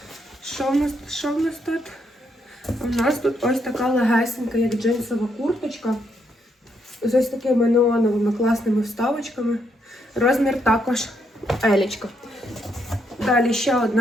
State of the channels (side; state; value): both; normal; correlation 0.76